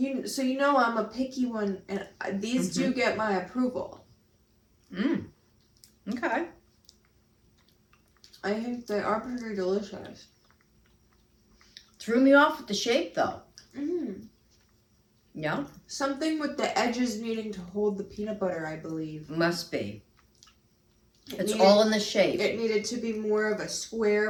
So you know I'm a picky one, and these do get my approval. Okay. I think they are pretty delicious. Threw me off with the shape though. Yeah. Something with the edges needing to hold the peanut butter, I believe. Must be. It's all in the shape. It needed to be more of a square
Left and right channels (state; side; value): identical; both; correlation 1.00